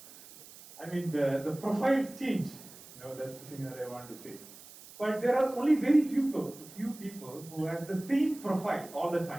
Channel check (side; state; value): right; noise; hiss, 19 dB below the sound